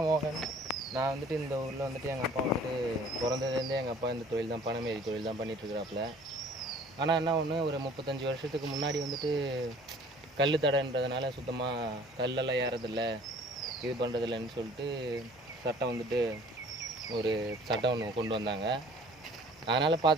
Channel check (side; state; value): both; normal; correlation 0.52